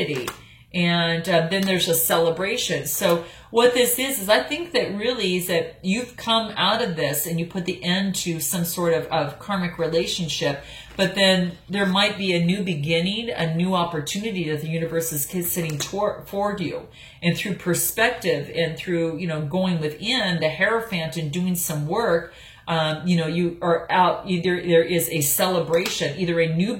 and then there's a celebration. So what this is I think that really is that you've come out of this and you put the end to some sort of karmic relationship, but then there might be a new beginning, a new opportunity that the universe is sitting toward you. And through perspective and through, going within the Hierophant and doing some work, you are out, there is a celebration, either a new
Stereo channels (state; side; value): identical; both; correlation 1.00